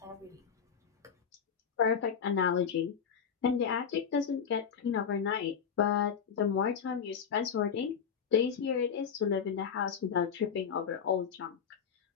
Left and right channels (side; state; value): right; quieter; 7.2 dB